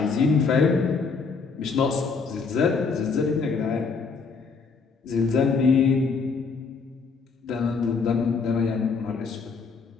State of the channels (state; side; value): quieter; right; 4.8 dB